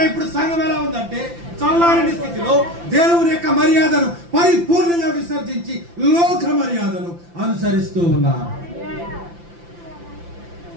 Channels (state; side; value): late; left; 5.8 ms